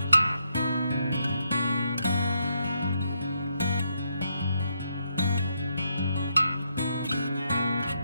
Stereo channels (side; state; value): both; inverted; correlation -0.78